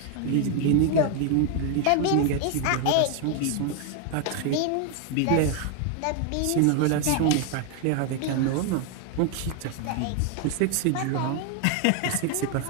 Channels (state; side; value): different; both; correlation 0.00